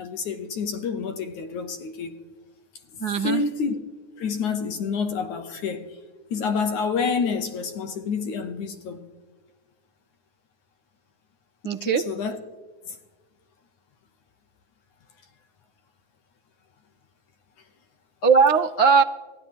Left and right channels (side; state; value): right; late; 9.6 ms